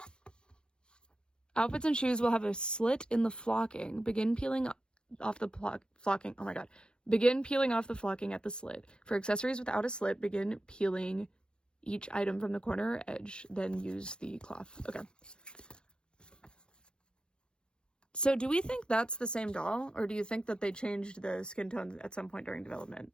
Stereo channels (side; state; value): right; late; 0.053 ms